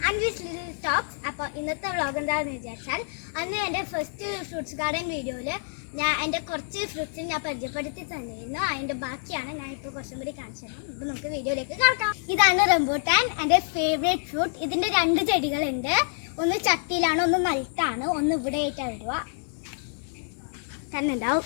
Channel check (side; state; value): right; silent; digital silence